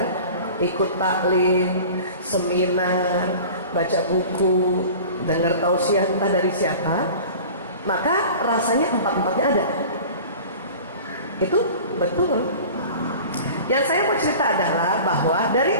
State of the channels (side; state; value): both; inverted; correlation -0.40